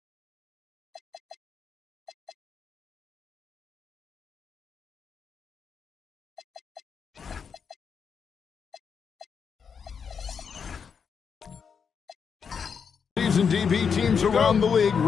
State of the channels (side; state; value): right; quieter; 6.5 dB